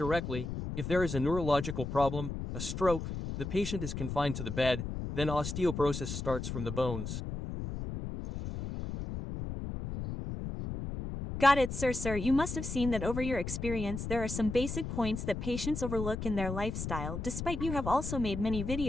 If there is a neurological problem, a stroke, the patient is confined to the bed, then osteoporosis starts from the bones. Got it, sir. You must have seen that over your experience there are some basic points that patients overlook in their lifestyle. Despite you have also made many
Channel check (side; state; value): left; noise; rumble, 5 dB below the sound